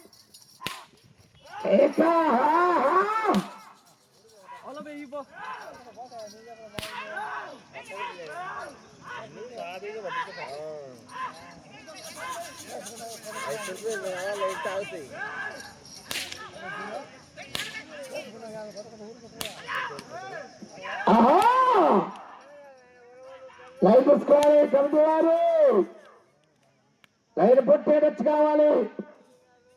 లైన్ పుచ్చుకోవాలి. కమిటీ వారు లైన్ పుట్టేటచ్చు కావాలి.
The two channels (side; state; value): both; identical; correlation 1.00